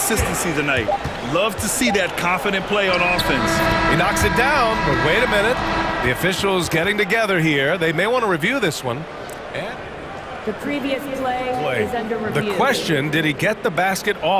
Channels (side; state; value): both; identical; correlation 1.00